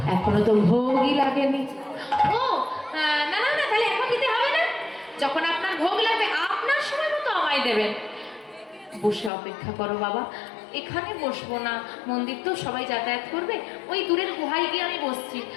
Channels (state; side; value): drops out; right; at 9.3 s